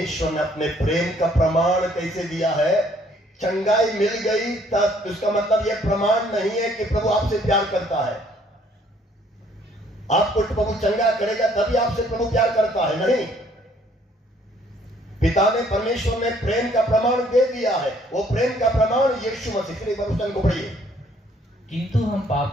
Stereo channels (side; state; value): both; normal; correlation 0.62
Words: ने अपने प्रेम का प्रमाण कैसे दिया है? चंगाई मिल गई तब, उसका मतलब यह प्रमाण नहीं है कि प्रभु आपसे प्यार करता है। आपको प्रभु चंगा करेगा तभी आपसे प्रभु प्यार करता है, नहीं। पिता ने, परमेश्वर ने प्रेम का प्रमाण दे दिया है। वो प्रेम का प्रमाण यीशु मसीह के वचन को पढ़िए। किंतु हम